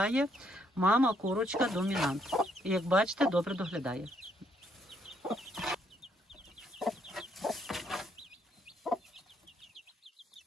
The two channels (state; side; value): normal; both; correlation 0.71